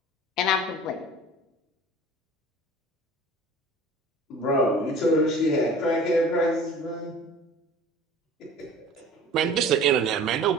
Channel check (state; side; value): normal; both; correlation 0.43